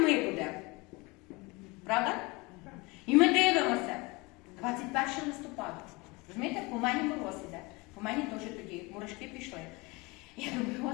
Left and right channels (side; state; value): right; quieter; 25.3 dB